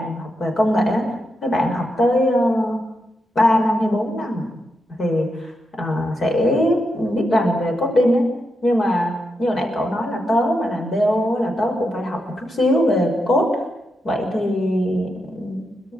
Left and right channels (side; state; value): both; normal; correlation 0.84